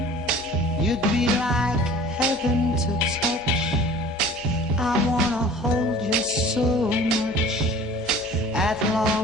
You'd be like heaven to touch. I wanna hold you so much. At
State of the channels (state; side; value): normal; both; correlation 0.45